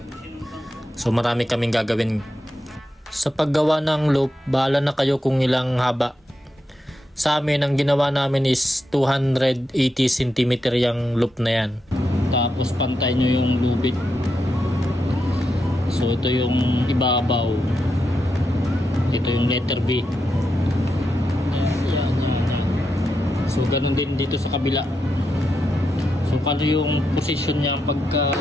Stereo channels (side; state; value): both; normal; correlation 0.85